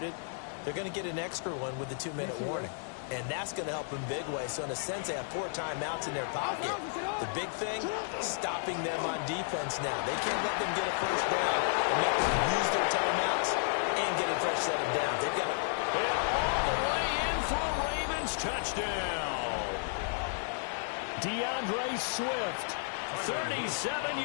they're going to get an extra one with the 2-minute warning. And that's going to help in big way. So in a sense, they have 4 timeouts in their pocket. The big thing, stopping them on defense now. They can't let them get a first down and make them use their timeouts and get a fresh set of downs. They've got to... all the way in for a Ravens touchdown. DeAndre Swift, 37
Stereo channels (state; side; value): silent; right; digital silence